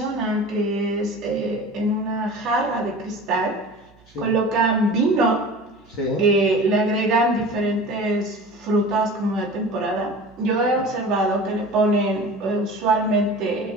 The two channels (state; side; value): noise; right; hum, 29 dB below the sound